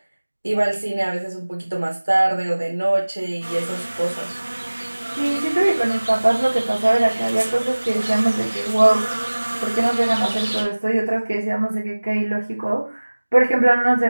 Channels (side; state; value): both; inverted; correlation -1.00